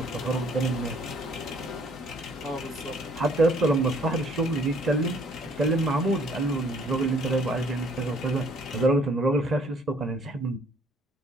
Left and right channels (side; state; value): both; normal; correlation 0.61